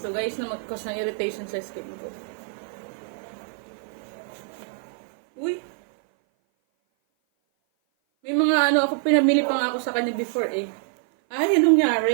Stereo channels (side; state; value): left; silent; 57 dB below the other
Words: guys na mag-cause ng irritation sa skin ko. Uy, ako, pinamili pa nga ako sa kanya before eh. Ay, anong